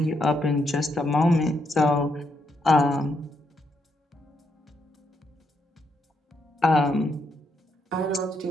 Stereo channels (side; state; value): both; normal; correlation 0.78